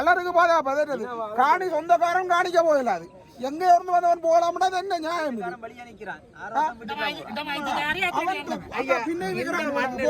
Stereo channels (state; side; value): identical; both; correlation 1.00